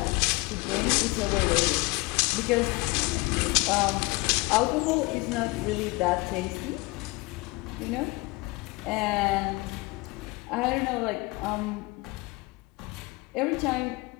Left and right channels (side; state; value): right; quieter; 24.2 dB